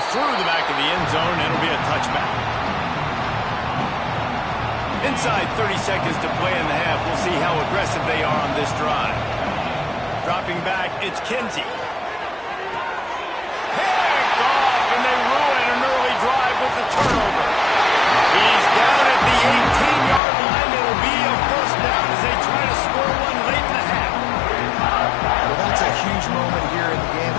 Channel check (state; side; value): drops out; right; at 20.2 s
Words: through the back of the end zone, and it'll be a touchback. Inside 30 seconds to play in the half. We'll see how aggressive they are on this drive. Dropping back, it's Kinsey. Picked off, and they ruin an early drive with the turnover. He's down at the 18-yard line. It'll be a first down as they try to score one late in the half. Well, that's a huge moment here in the game